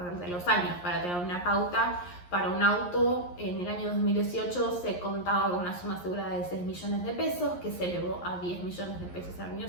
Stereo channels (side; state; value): right; late; 11 ms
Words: de los años. Para tener una pauta, para un auto en el año 2018 se contaba con una suma asegurada de 6 millones de pesos, que se elevó a 10 millones de pesos al año